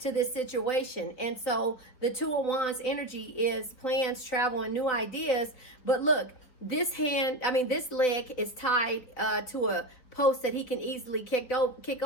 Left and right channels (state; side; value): late; right; 4.4 ms